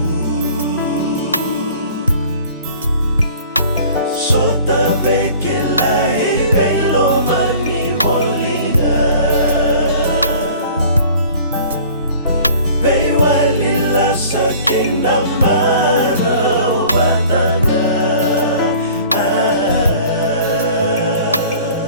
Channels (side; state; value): both; inverted; correlation -0.48